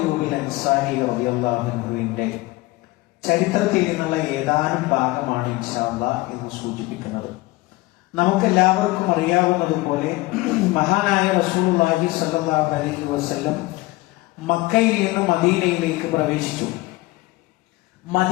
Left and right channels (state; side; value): quieter; right; 20.6 dB